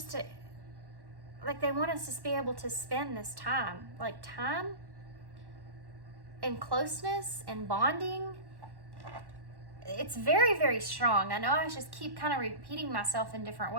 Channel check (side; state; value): left; late; 1.1 ms